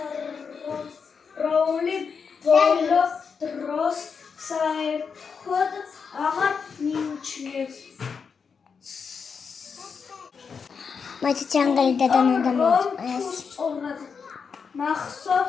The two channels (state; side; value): quieter; right; 5.9 dB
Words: როული ბოლო დროს საერთოდ აღარ მიიჩნევს. მაინც ჯანგალი დადანადამოწეს.